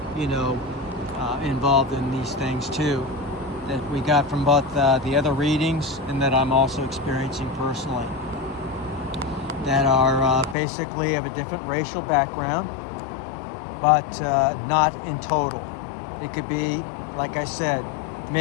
involved in these things too, that we got from both the other readings and that I'm also experiencing personally, that are basically of a different racial background, but not in total. It could be, like I said,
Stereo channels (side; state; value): right; drops out; at 10.6 s